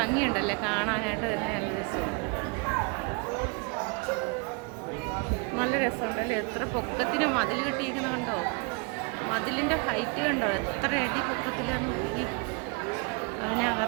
കാണാനായിട്ട് തന്നെ. നല്ല രസം, നല്ല രസമുണ്ടല്ലേ. എത്ര പൊക്കത്തിന് മതിൽ കെട്ടിയിരിക്കുന്ന കണ്ടോ? മതിലിൻ്റെ ഹൈറ്റ് കണ്ടോ? എത്ര അടി പൊക്കത്തിലാണ് നോക്കി.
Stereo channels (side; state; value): left; quieter; 33.1 dB